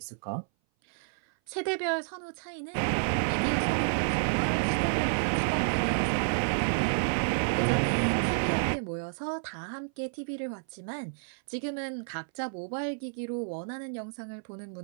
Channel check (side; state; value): left; silent; 58 dB below the other